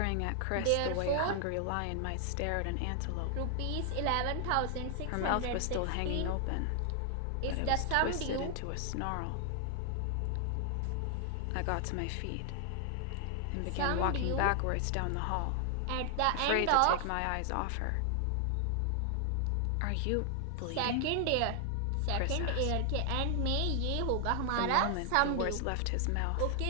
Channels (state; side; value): different; both; correlation 0.00